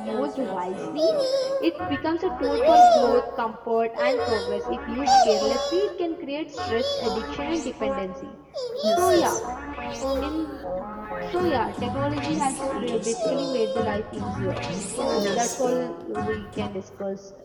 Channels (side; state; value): both; identical; correlation 1.00